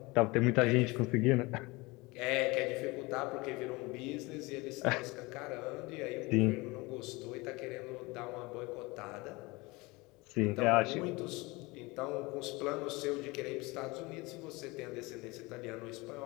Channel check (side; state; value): right; quieter; 24.0 dB